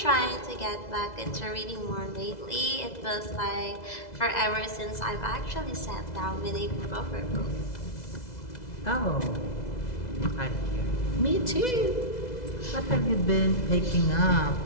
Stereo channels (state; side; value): late; right; 2.0 ms